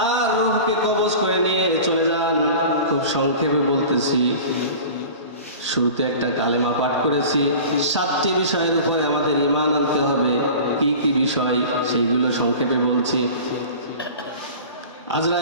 রূহকে কবজ করে নিয়ে চলে যান। খুব সংক্ষেপে বলতেছি, শুরুতে একটা কালেমা পাঠ করেছি। 7টি বিষয়ের উপরে আমাদের ঈমান আনতে হবে। কি কি বিষয় সেইগুলো সংক্ষেপে বলছি।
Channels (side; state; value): both; inverted; correlation -0.38